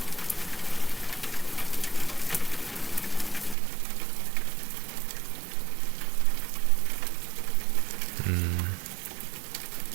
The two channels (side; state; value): left; drops out; at 3.6 s